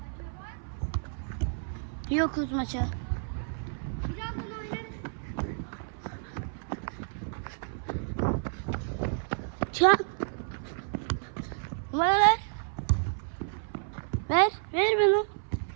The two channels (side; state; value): left; silent; 55 dB below the other